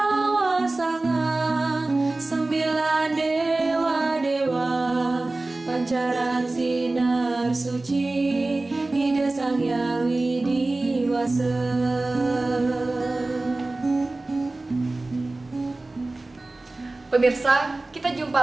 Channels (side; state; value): left; quieter; 3.0 dB